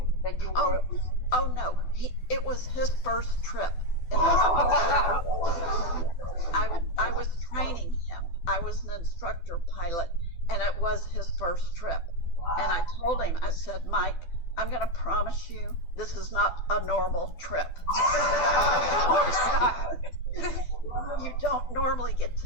that you were... Oh no, it was his first trip. I was training him. I was an instructor pilot, and it was his first trip. And I told him, I said, Mike, I'm going to promise you this is not a normal trip. You don't normally get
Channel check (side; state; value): right; late; 12 ms